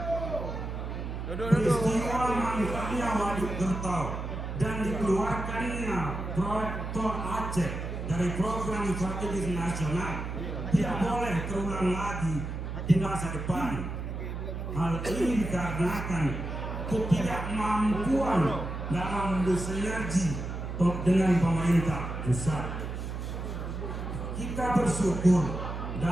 Peristiwa mangkraknya Waduk Gertau dan dikeluarkannya proyek Tol Aceh dari program strategis nasional tidak boleh terulang lagi di masa depan. Hal ini dikarenakan ketidakmampuan dalam bersinergi dengan pemerintah pusat. Kita bersyukur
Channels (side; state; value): right; noise; hum, 5 dB below the sound